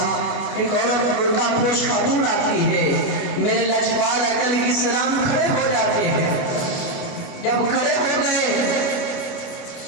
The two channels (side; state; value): right; late; 29 ms